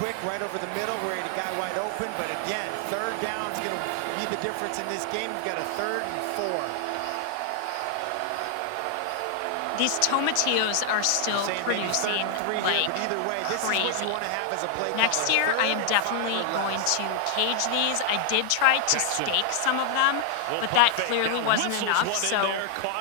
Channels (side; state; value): both; different; correlation 0.00